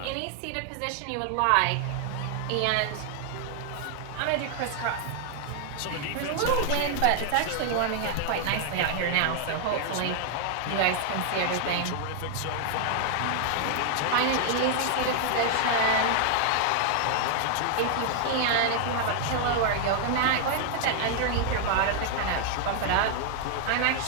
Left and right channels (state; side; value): different; both; correlation 0.00